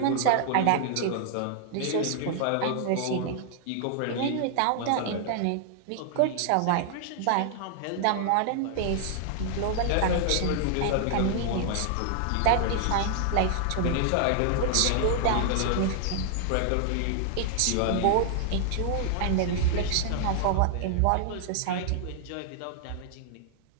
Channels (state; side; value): different; both; correlation -0.01